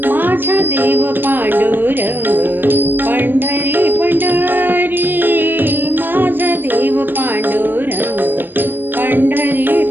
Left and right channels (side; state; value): left; late; 0.094 ms